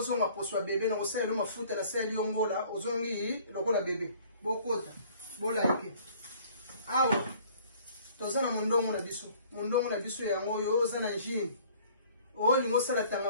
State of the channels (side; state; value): both; inverted; correlation -0.54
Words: zonga poswa bebe na kosala lo mafuta na sali yongola ozongi lokola bebe bokota bolike awa toza na mundongo na biso yango yo oza na njini o lingo sala